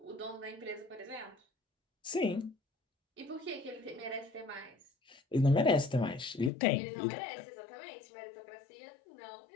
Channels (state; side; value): drops out; right; at 6.5 s